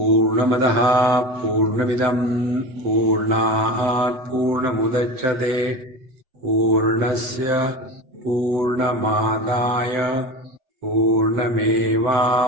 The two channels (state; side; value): late; left; 7.8 ms